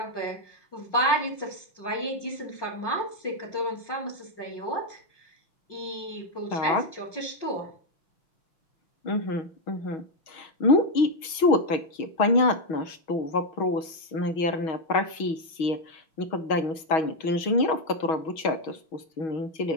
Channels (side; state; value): right; late; 6.3 ms